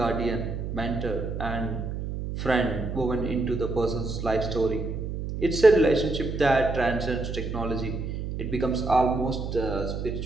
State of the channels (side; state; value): right; noise; hum, 5 dB below the sound